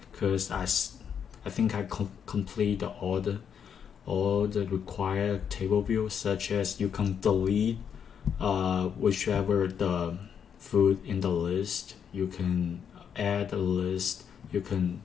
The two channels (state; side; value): quieter; right; 7.7 dB